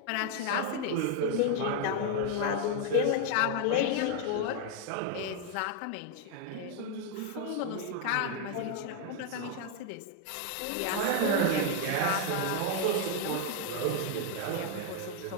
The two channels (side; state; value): both; different; correlation 0.01